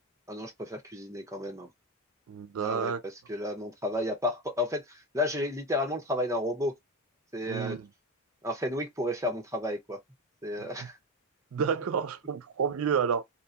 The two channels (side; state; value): both; normal; correlation 0.14